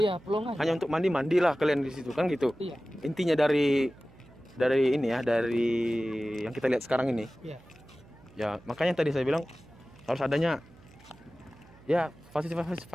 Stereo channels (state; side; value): noise; right; hum, 25 dB below the sound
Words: pelong aja. Hanya untuk mandilah kalian di situ kan gitu. Iya. Intinya dari ini ya, dari yang kita lihat sekarang ini. Iya. Ya, makanya tadi saya bilang harus adanya ya